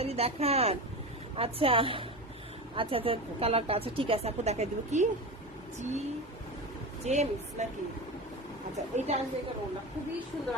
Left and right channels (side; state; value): both; normal; correlation 0.24